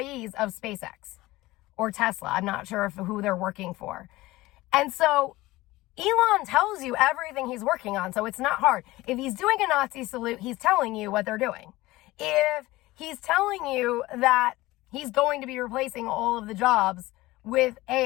of SpaceX or Tesla. I'm not sure who they're working for. And so Elon tells you everything he's working on, so it's not hard. If he's doing a Nazi salute, he's telling you what they're doing. If he's telling you that he's going to be replacing all of the jobs with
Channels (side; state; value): right; quieter; 18.9 dB